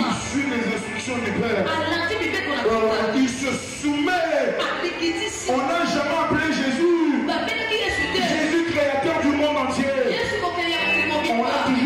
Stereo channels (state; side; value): identical; both; correlation 1.00